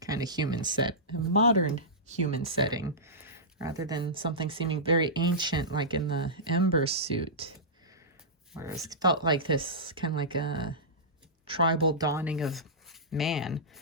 kind of a modern human setting, rather than something seeming very ancient like in the Embers suit, whereas it felt like this kind of like a tribal dawning of man.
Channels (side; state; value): both; normal; correlation -0.16